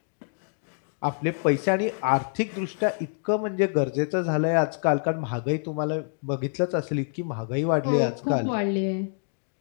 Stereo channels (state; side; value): silent; right; digital silence